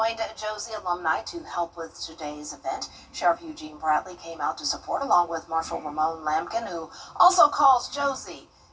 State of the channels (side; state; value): both; identical; correlation 1.00